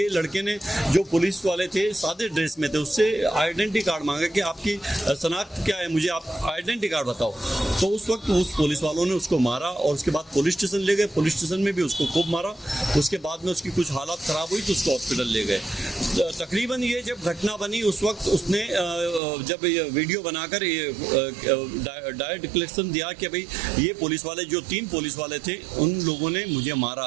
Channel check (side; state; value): left; drops out; at 19.2 s